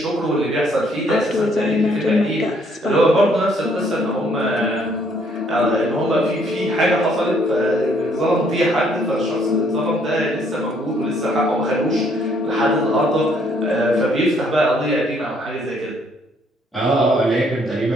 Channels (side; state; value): both; normal; correlation 0.66